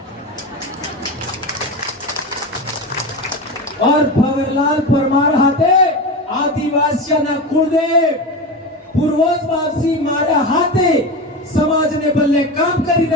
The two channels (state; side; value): normal; both; correlation 0.22